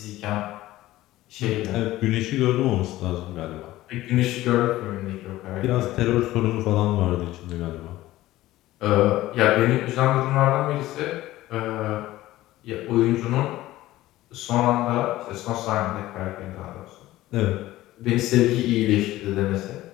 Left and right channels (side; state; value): right; quieter; 16.2 dB